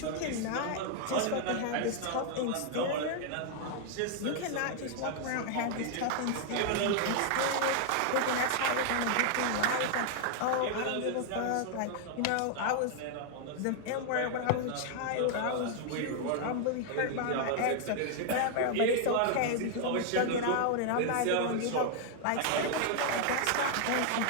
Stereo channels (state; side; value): different; both; correlation 0.00